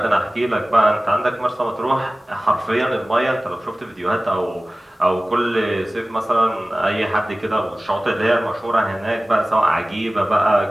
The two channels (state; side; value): normal; both; correlation 0.97